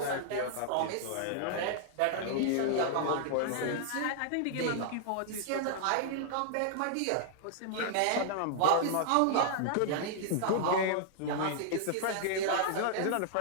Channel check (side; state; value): both; different; correlation -0.01